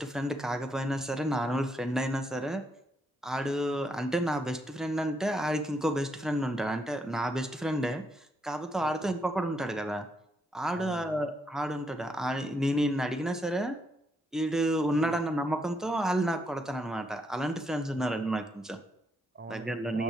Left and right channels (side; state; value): both; normal; correlation 0.78